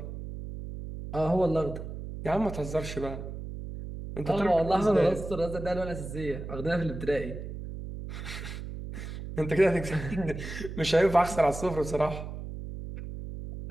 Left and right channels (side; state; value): right; noise; hum, 8 dB below the sound